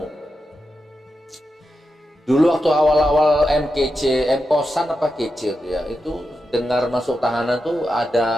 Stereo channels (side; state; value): both; normal; correlation 0.89